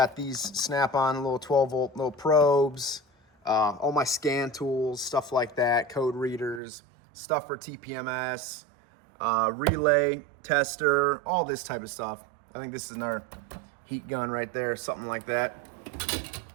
these snap-on little 12-volt little probes. All my scan tools, stuff like that, code readers, stuff for TPMS, relay, tester, all this type of stuff. I think this is another heat gun right there, something like that.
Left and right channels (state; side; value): drops out; left; at 6.6 s